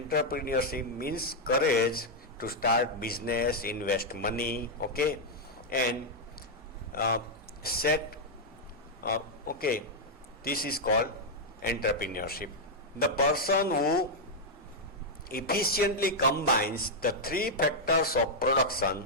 means courage to start business, invest money, okay, and set, okay, this is called entrepreneurship. The person who efficiently combines the three factors of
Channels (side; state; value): both; normal; correlation -0.02